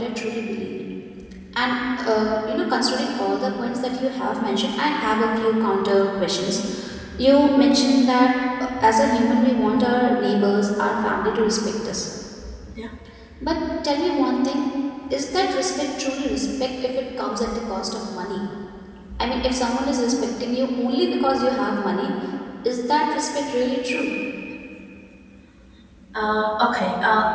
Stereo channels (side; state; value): both; identical; correlation 1.00